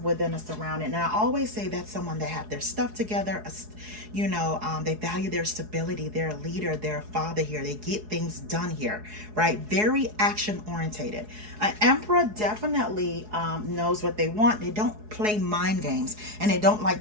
a surrounding. And I always say that's someone that have their stuff together. They value their stability. They're a leader. They're a father here. They get things done here, right? Very action orientated. An Emperor definitely knows what they want. They don't play mind games, and they don't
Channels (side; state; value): left; late; 4.7 ms